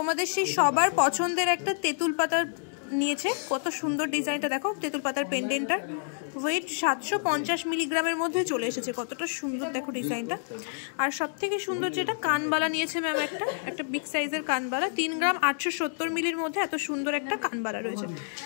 সেই সবার পছন্দের একটা তেঁতুল পাতার নিয়েছে। কত সুন্দর ডিজাইনটা দেখো, তেঁতুল পাতার পেন্ডেন্টটার ওয়েট 750 মিলিগ্রামের মধ্যে চলে এসেছে। কতটা সুন্দর দেখো ডিজাইনটা। আর সব থেকে সুন্দর যেটা কানবালা নিয়েছে ম্যাম, একটা বিগ সাইজের কানবালা, 3 গ্রাম 870 মিলির মধ্যে এত সুন্দর একটা কানবালা রয়েছে।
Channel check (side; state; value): right; silent; digital silence